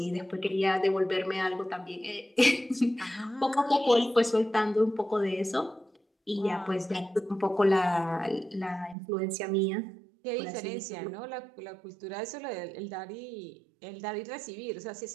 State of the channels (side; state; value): left; drops out; at 9.0 s